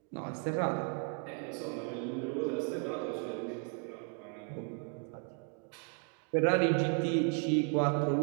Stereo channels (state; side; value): quieter; left; 38.6 dB